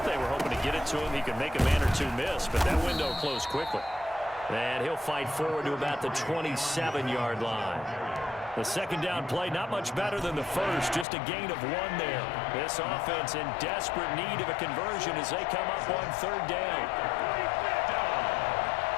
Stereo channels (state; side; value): drops out; right; at 11.1 s